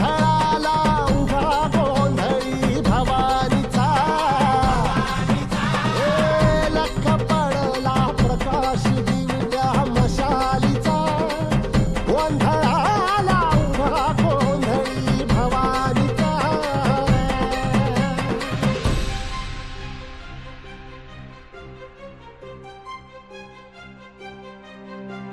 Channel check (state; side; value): identical; both; correlation 1.00